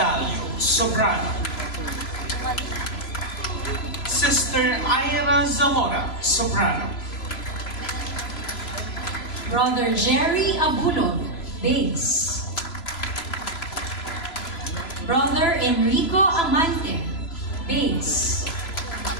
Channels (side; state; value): right; late; 3.0 ms